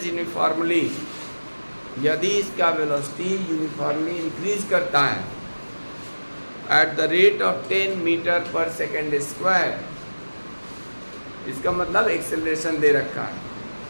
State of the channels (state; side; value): inverted; both; correlation -1.00